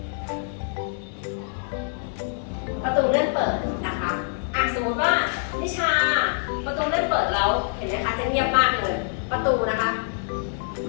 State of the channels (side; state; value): right; silent; digital silence